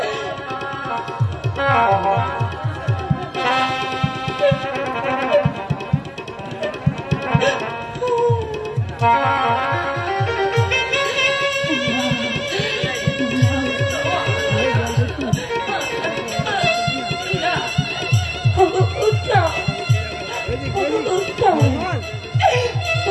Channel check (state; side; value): identical; both; correlation 1.00